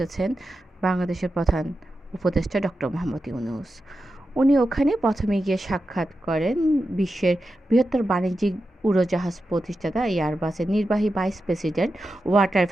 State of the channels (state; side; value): normal; both; correlation 0.90